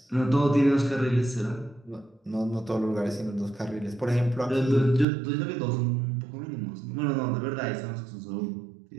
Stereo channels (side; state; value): left; drops out; at 5.1 s